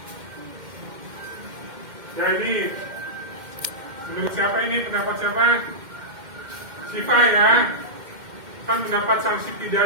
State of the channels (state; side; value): late; left; 2.1 ms